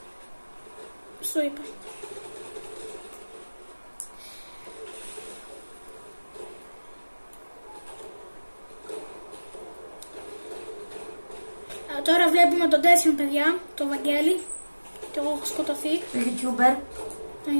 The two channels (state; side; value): inverted; both; correlation -1.00